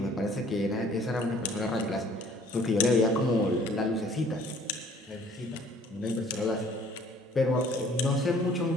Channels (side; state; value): both; normal; correlation 0.56